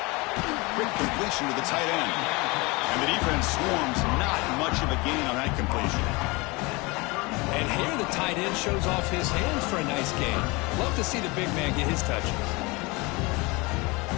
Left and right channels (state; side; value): quieter; right; 25.5 dB